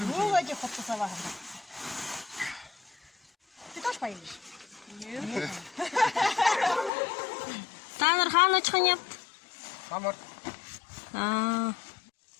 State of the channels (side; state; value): right; drops out; at 6.9 s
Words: Вроде хуптасава. Ты тоже поедешь? Нет. Танар хаан очхын япт? Самар.